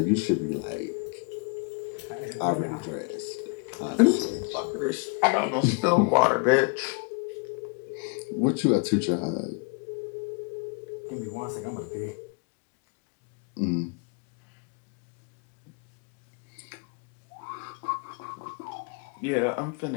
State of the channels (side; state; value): right; quieter; 34.3 dB